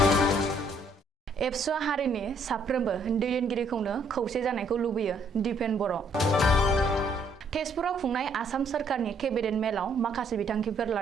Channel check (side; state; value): both; normal; correlation 0.67